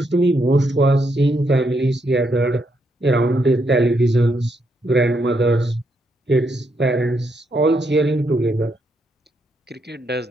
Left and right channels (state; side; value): normal; both; correlation 0.78